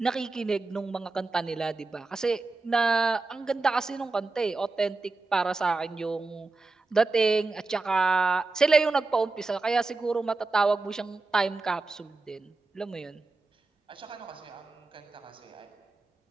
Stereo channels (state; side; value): quieter; left; 3.6 dB